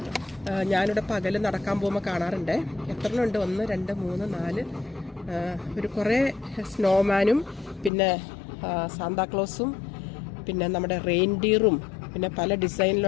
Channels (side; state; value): right; drops out; at 7.9 s